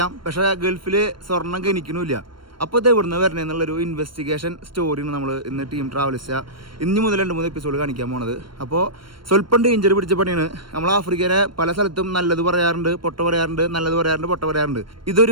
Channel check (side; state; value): left; late; 0.72 ms